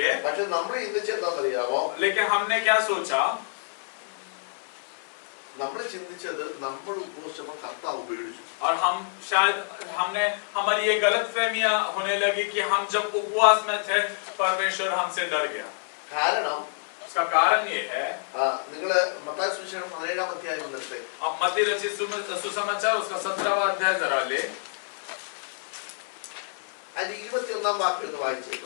പക്ഷെ നമ്മൾ ചിന്തിച്ച എന്താണെന്നറിയാമോ? लेकिन हमने क्या सोचा? നമ്മൾ ചിന്തിച്ചത് നമ്മൾ ഉപവസിച്ചപ്പോൾ കർത്താവ് പേടിച്ചു. और हमारी ये गलत फहमियां होने लगी कि हम जब उपवास में थे, परमेश्वर हमसे डर गया. കാരണം उसका कारण ये है, നിങ്ങള് മത്തായി സുവിശേഷം 17-ാം അധ്യായം വന്നിട്ട് अब मत्ती रचित सुसमाचार उसका 17वां अध्याय जरा ले. അതിന്റെ 21-ാം വാക്യം ഒന്ന് വായിച്ചേ.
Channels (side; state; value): right; silent; 60 dB below the other